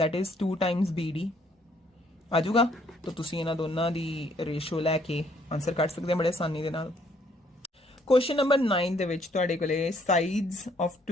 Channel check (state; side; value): normal; both; correlation 0.66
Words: इज 2 टाइम्स BD आ जाऊगा। तो तुसीं इन्हां दोनां दी रेशियो लैके आंसर कढ सकदे बड़े आसानी दे नाल। क्वेश्चन नंबर 9 दे विच तुहाडे कोले sides of